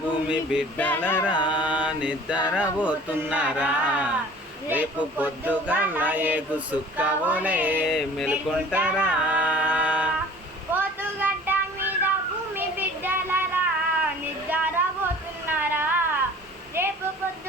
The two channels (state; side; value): normal; both; correlation 0.47